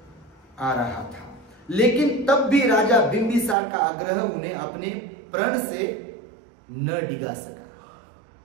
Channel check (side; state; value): left; drops out; at 3.6 s